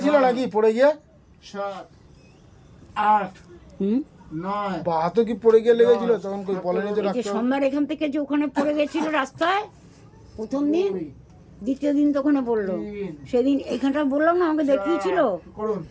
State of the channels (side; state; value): both; identical; correlation 1.00